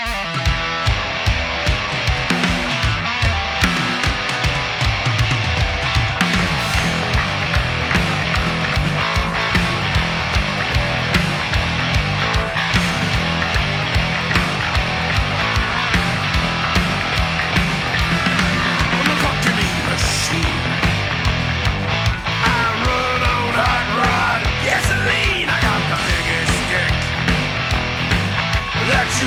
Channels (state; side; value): identical; both; correlation 1.00